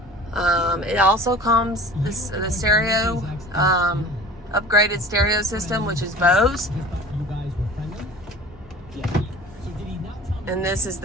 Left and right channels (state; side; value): normal; both; correlation 0.42